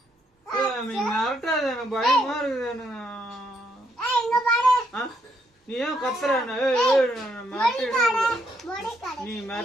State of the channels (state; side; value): normal; both; correlation 0.75